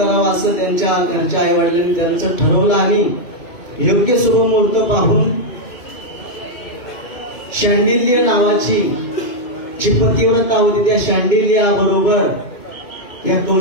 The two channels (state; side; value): late; right; 2.2 ms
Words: असं त्यांच्या घरच्या आई वडिलांनी त्यांचं ठरवलं आणि योग्य शुभ मुहूर्त पाहून शांडिल्य नावाची जी पतिव्रता होती त्या शांडिल्या बरोबर या